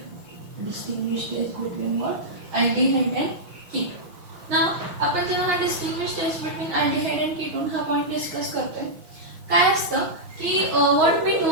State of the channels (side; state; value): left; late; 6.1 ms